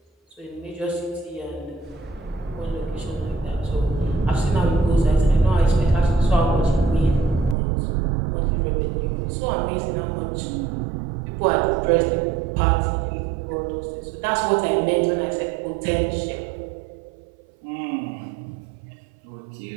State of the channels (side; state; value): left; drops out; at 7.6 s